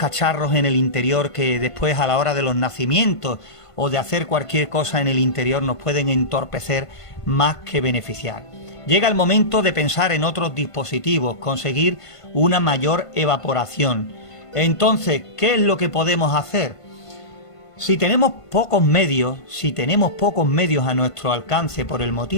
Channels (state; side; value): late; right; 1.5 ms